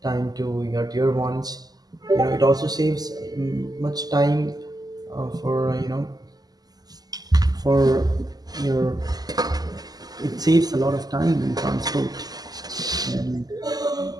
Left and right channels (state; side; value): late; left; 0.19 ms